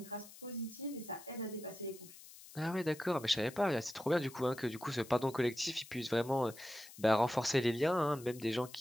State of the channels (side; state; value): left; noise; hiss, 18 dB below the sound